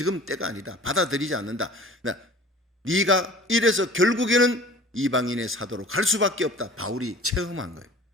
때가 아니다. 받아들이지 않는다. 네가 이래서 결국에는 이방인의 사도로 갈 수밖에 없다. 바울이 체험한 거예요.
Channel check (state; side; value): normal; both; correlation 0.45